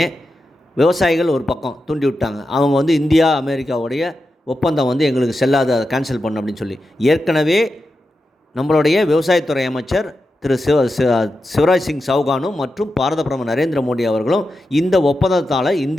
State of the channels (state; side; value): normal; both; correlation 0.90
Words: விவசாயிகள் ஒரு பக்கம் தூண்டி விட்டாங்க. அவங்க இந்தியா அமெரிக்காவுடைய ஒப்பந்தம் எங்களுக்கு செல்லாத, அதை கேன்சல் பண்ண அப்படின்னு சொல்லி ஏற்கனவே நம்மளுடைய விவசாயத்துறை அமைச்சர் திரு சிவராஜ் சிங் சௌகானும் மற்றும் பாரத பிரதமர் நரேந்திர மோடி அவர்களும் இந்த ஒப்பந்தத்தால்